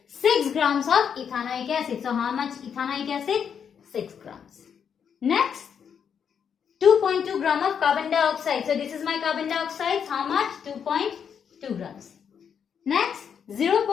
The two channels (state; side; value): quieter; right; 7.5 dB